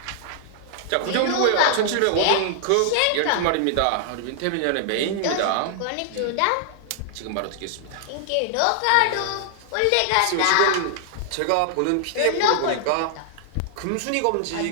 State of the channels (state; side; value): different; both; correlation -0.01